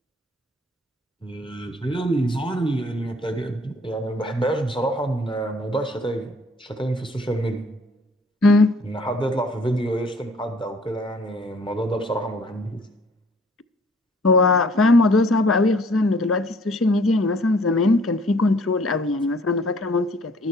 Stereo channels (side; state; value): both; normal; correlation 0.57